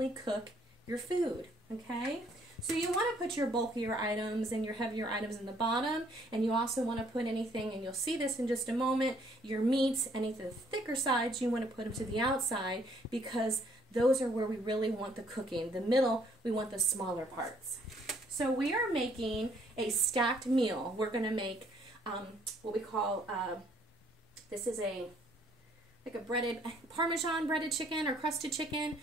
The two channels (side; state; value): both; normal; correlation 0.64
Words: cook your food, okay? So you want to put your bulkier items and your heavier items in the bottom, and you also want to put anything, and you'll see this in just a moment, your meats, any of the thicker sides, you want to put them to the outside, because those are where we really want the cooking. The middle, we want the smaller parts. So we are making a stacked meal. We're going to make what we call, this is like a breaded, Parmesan breaded chicken or crusted chicken,